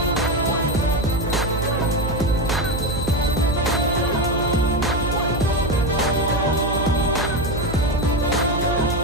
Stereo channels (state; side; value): noise; right; hum, 5 dB below the sound